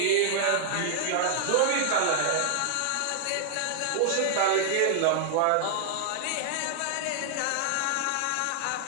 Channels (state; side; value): different; both; correlation -0.01